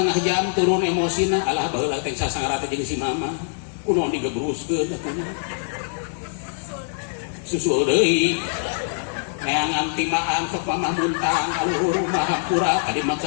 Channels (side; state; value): right; silent; 60 dB below the other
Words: jam turun emosina alah baheula teh sasangara teh jeung si mama kunaon digebruskeun atuh susul deui neangan timaan sok mama muntang kaluhur mah hampura kadi